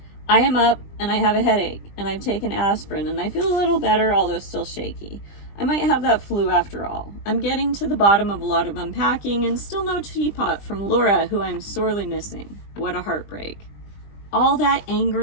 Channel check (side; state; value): right; late; 20 ms